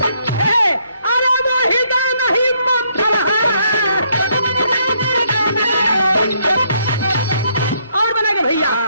अरे वो हृदय नहीं पत्थर है। और बना के भैया,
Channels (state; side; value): inverted; both; correlation -0.71